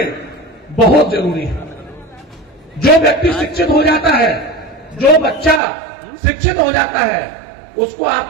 बहुत जरूरी है। जो व्यक्ति शिक्षित हो जाता है, जो बच्चा शिक्षित हो जाता है, उसको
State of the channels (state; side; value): drops out; left; at 5.6 s